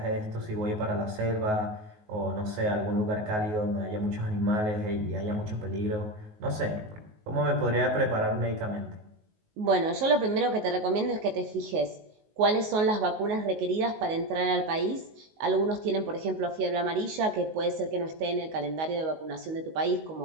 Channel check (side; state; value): left; late; 19 ms